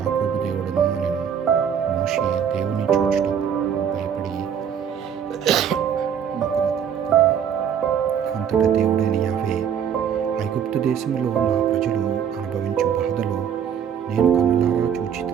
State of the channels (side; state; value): left; quieter; 8.2 dB